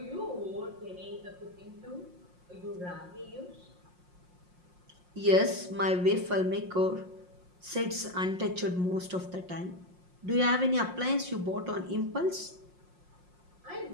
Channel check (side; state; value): left; late; 5.6 ms